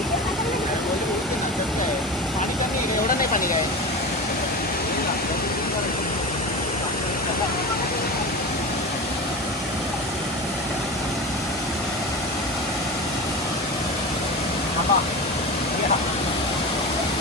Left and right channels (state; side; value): normal; both; correlation 0.27